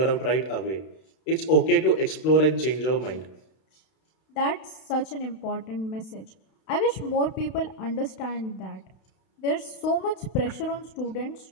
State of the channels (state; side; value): late; right; 32 ms